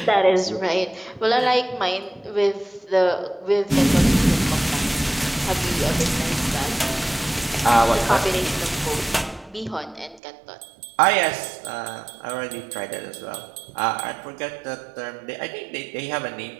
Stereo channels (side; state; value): left; drops out; at 10.2 s